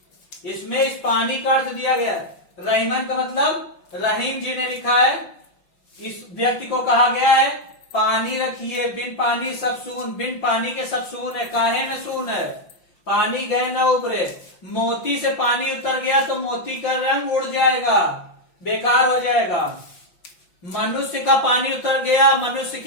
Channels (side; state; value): right; late; 5.8 ms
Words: इसमें इस पानी का अर्थ दिया गया है। रहीमन का मतलब रहीम जी ने लिखा है। इस व्यक्ति को कहा गया है पानी रखिए, बिन पानी सब सून। बिन पानी के सब सून है, काहे में सून है? पानी गए ना उबरे। मोती से पानी उतर गया तो मोती का रंग उड़ जाएगा, बेकार हो जाएगा। मनुष्य का पानी उतर गया, मनुष्य